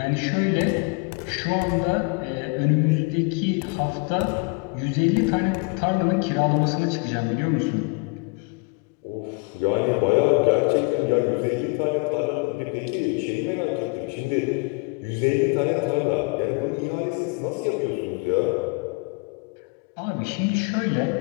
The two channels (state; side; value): quieter; right; 31.7 dB